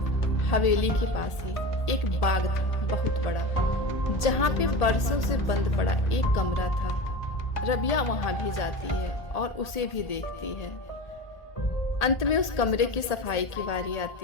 हवेली के पास ही एक बाग था बहुत बड़ा, जहाँ पे बरसों से बंद पड़ा एक कमरा था। रबिया वहां भी जाती है और उसे भी देखती है। अंत में उस कमरे की सफाई की बारी आती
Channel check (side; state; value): right; late; 1.8 ms